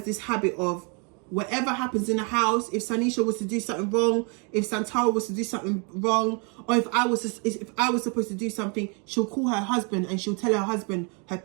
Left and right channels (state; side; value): quieter; left; 35.2 dB